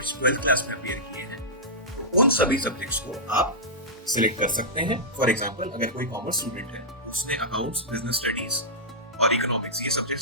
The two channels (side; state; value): both; normal; correlation -0.13